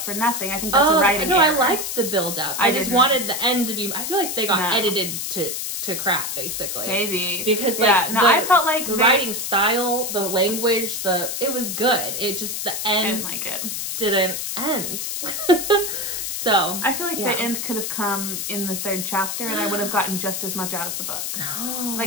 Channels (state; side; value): noise; left; hiss, 3 dB below the sound